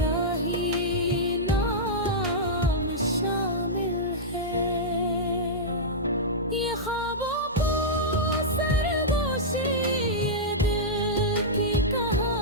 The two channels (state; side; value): normal; both; correlation -0.10